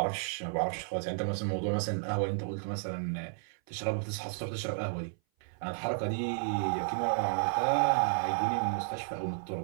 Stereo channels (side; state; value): left; silent; 56 dB below the other